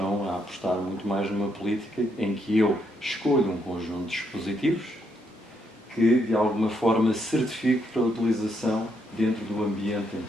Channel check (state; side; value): normal; both; correlation 0.76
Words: a apostar muito mais numa política em que eu escolho um conjunto de dispositivos que de alguma forma certifique para a utilização dentro do ambiente